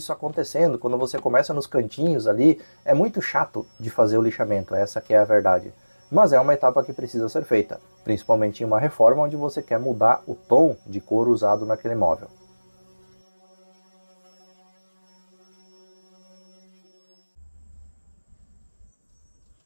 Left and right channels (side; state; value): both; inverted; correlation -1.00